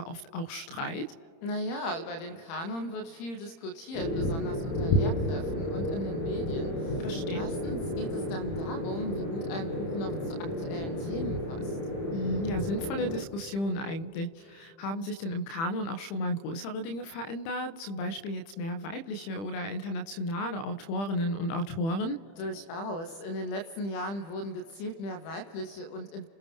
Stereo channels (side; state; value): right; late; 30 ms